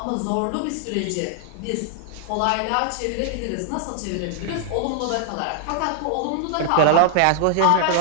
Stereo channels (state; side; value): different; both; correlation 0.00